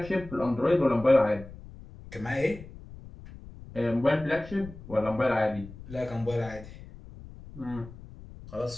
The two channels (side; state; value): left; noise; rumble, 16 dB below the sound